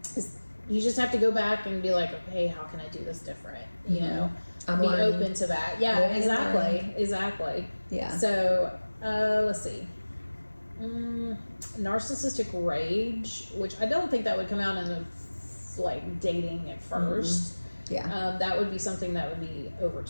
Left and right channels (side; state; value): both; inverted; correlation -1.00